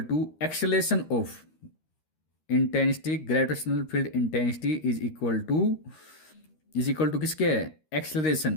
to acceleration of, intensity gravitational field intensity is equal to किसके,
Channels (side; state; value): right; late; 13 ms